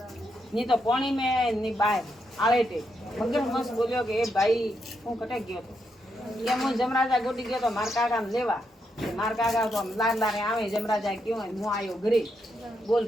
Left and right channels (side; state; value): both; normal; correlation 0.81